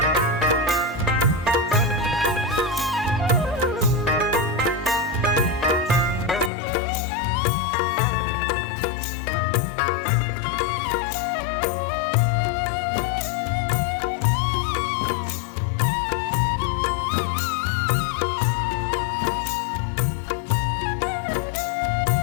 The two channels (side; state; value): right; drops out; at 6.5 s